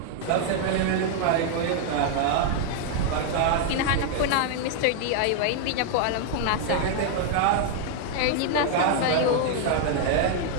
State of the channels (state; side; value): different; both; correlation 0.00